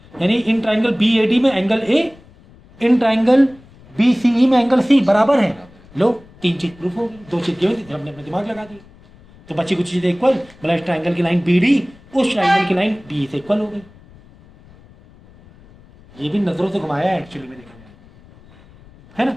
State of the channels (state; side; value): noise; left; rumble, 25 dB below the sound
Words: यानी in triangle B A D में angle A, in triangle B C E में एंगल सी बराबर है। लो 3 चीज प्रूफ हो गई, 2 चीज दी हुई थी, हमने अपना दिमाग लगा दी, तो बची कुछ चीजें इक्वल, मतलब इस ट्राइंगल की लाइन बी डी उस ट्राइंगल की लाइन बी से इक्वल हो गई। ये भी नजरों से घुमाया है एक्चुअली में, देखा जाए है ना।